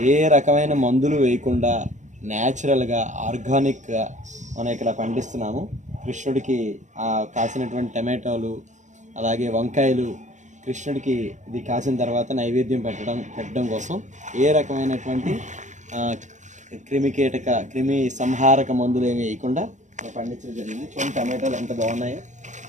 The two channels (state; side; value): late; left; 0.35 ms